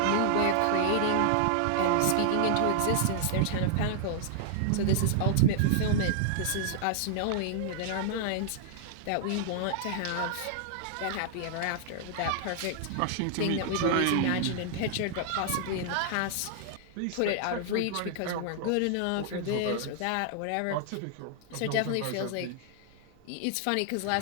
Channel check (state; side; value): different; both; correlation -0.01